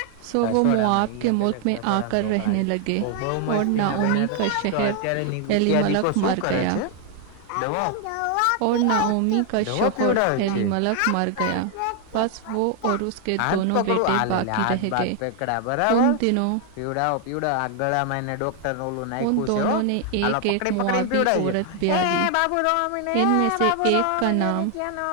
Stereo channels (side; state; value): both; different; correlation 0.00